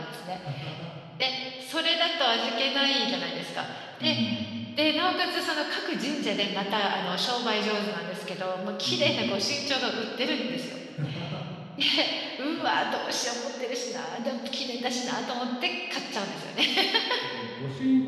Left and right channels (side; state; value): both; identical; correlation 1.00